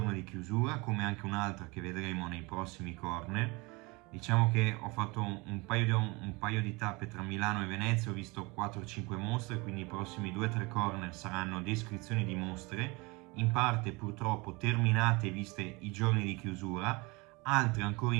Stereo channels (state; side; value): quieter; left; 25.8 dB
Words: di chiusura, come anche un'altra che vedremo nei prossimi corner. Diciamo che ho fatto un paio di tappe tra Milano e Venezia, ho visto 4-5 mostre, quindi i prossimi 2-3 corner saranno descrizioni di mostre, in parte purtroppo terminate e viste i giorni di chiusura, altre ancora